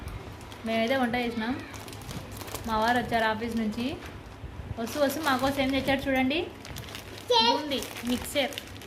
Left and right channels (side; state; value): both; identical; correlation 1.00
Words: మేమైతే వంట చేసినాం. మా వారు వచ్చారు ఆఫీస్ నుంచి. వస్తూ మాకోసం ఏం తెచ్చారు చూడండి. Boondi mixture